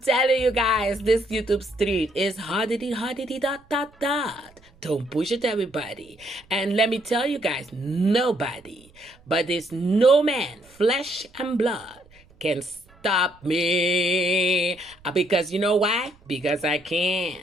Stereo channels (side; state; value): right; noise; rumble, 28 dB below the sound